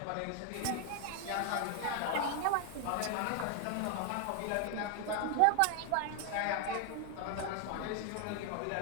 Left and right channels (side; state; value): both; different; correlation 0.00